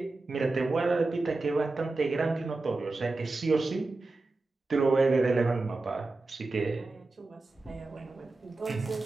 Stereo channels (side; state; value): left; quieter; 3.4 dB